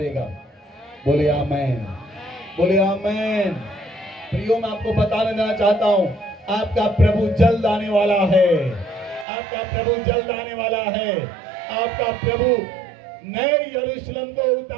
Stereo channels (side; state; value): left; drops out; at 9.2 s